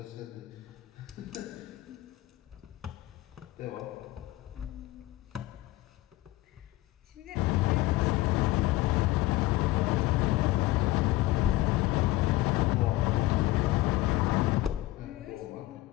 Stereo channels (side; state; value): right; quieter; 17.6 dB